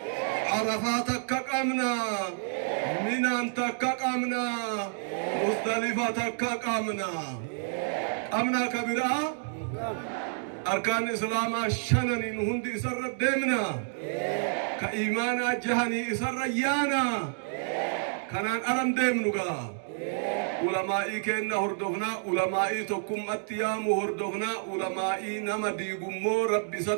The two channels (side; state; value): left; silent; digital silence